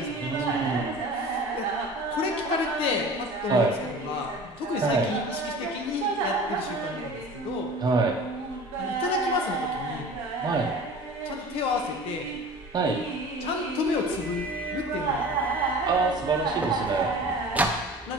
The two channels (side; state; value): both; normal; correlation 0.40